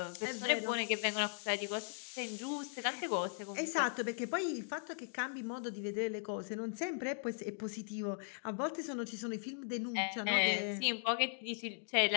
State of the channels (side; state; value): right; silent; digital silence